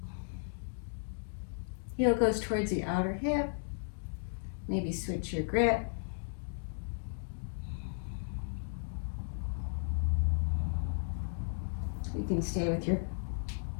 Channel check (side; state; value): right; silent; digital silence